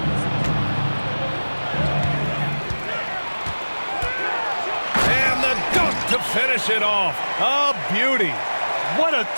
And the dunk to finish it off. A beauty. What a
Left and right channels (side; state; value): both; inverted; correlation -1.00